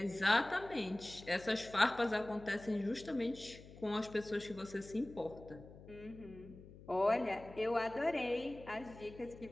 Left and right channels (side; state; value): left; noise; hum, 18 dB below the sound